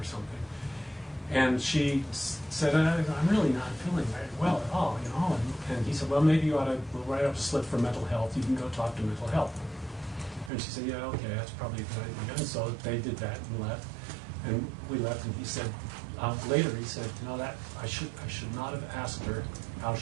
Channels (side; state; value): left; drops out; at 10.5 s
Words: something. And she said, I'm really not feeling very well at all, you know. And he said, well, maybe you ought to write up a slip for mental health. You can go talk to mental health. And she said, yeah, okay, that's probably a good idea. And so they did that and left. And we left, and he said, later he said, you know, that I should not have asked her how